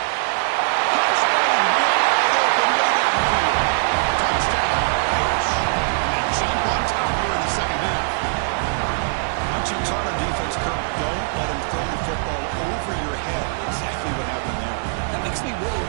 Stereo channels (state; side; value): silent; left; digital silence